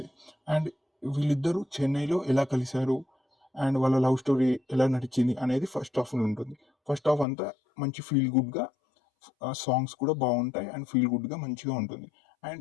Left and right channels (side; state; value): right; drops out; at 7.2 s